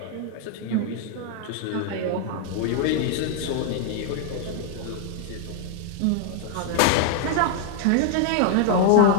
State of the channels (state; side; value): different; both; correlation 0.00